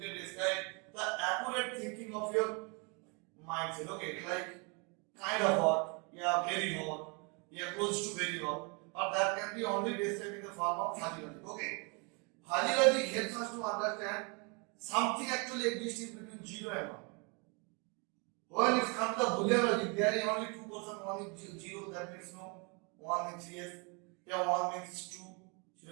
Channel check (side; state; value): left; quieter; 32.8 dB